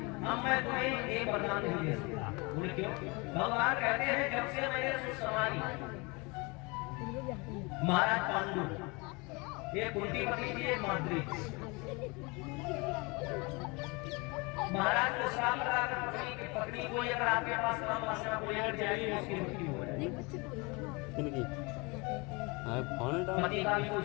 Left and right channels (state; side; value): quieter; right; 27.8 dB